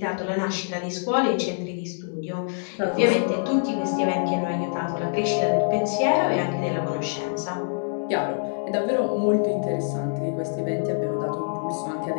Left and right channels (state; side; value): silent; right; 62 dB below the other